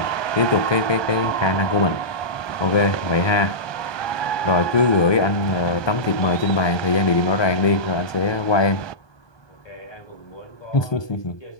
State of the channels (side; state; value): right; late; 1.2 ms